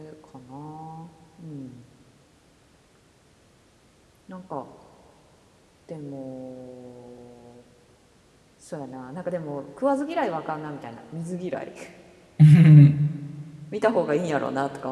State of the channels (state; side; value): identical; both; correlation 1.00